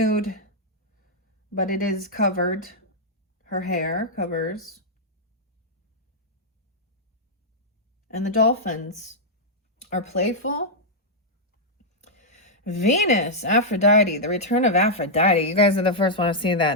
but it is covered. Her hair covers. And the dolphins are playful. Venus, Aphrodite, the return of Aphrodite. You guys are the first one to see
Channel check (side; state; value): both; normal; correlation -0.06